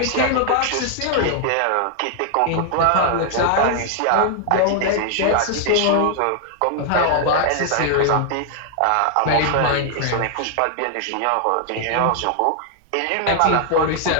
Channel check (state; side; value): different; both; correlation 0.00